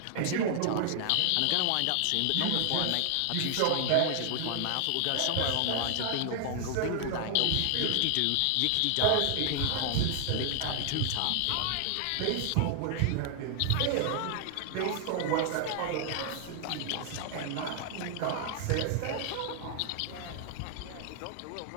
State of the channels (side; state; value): both; different; correlation 0.00